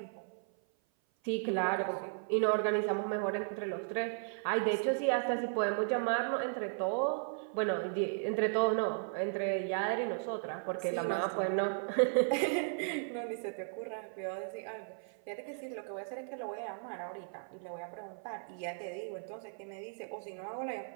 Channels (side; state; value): left; silent; 54 dB below the other